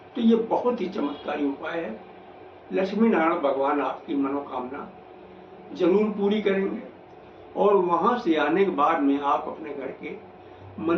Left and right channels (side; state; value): both; identical; correlation 1.00